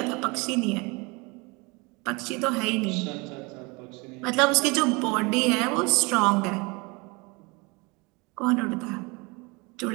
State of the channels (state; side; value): quieter; left; 27.3 dB